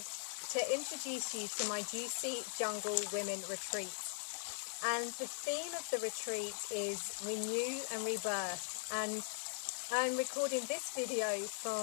to introduce you to my Juicy Jungle Women Retreat. And the theme of the retreat is Renew and Rebirth, and I'm recording this video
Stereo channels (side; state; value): right; silent; digital silence